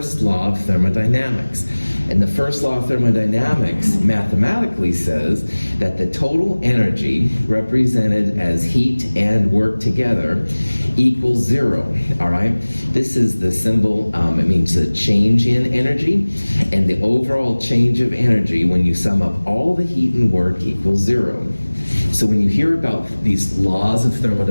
law of thermodynamics. And the first law of thermodynamics mathematically says that the total energy represented as heat and work together equals 0, all right? This is the symbol, it means the change in energy, and the overall change of energy when you sum up all the heat and work equals 0. So when you hear about these laws of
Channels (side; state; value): both; inverted; correlation -1.00